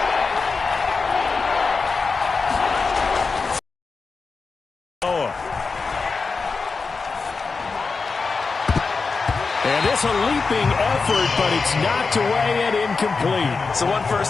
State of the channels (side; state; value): right; quieter; 4.5 dB